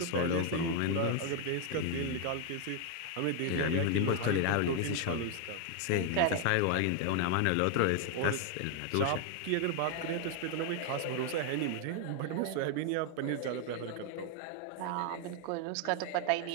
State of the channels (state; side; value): different; both; correlation 0.00